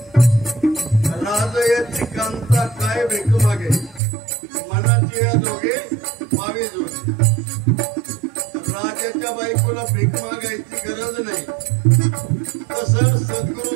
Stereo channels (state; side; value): drops out; left; at 4.0 s